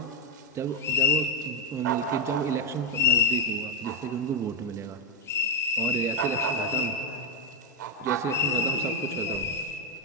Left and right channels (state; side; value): normal; both; correlation 0.02